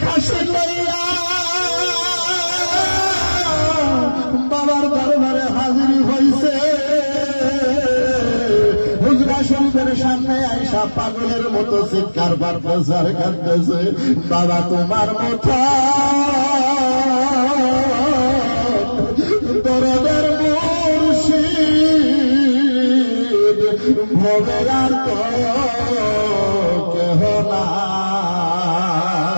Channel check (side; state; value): both; inverted; correlation -1.00